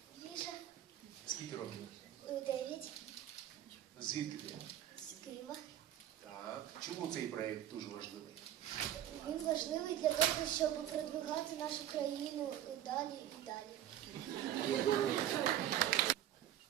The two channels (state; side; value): quieter; left; 11.7 dB